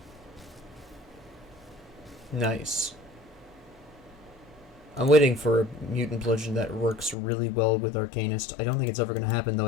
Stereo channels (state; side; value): drops out; right; at 7.2 s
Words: Nice. I'm waiting for a mutant bludgeon that works really well with Arcanist. I don't think it's ever going to happen, though.